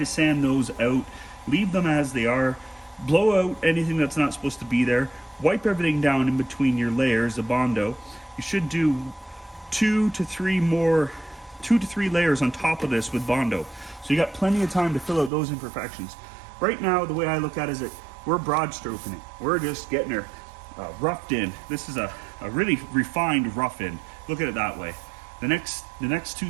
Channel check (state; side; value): drops out; left; at 15.3 s